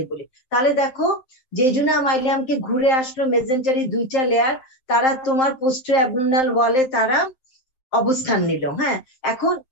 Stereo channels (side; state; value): right; late; 7.7 ms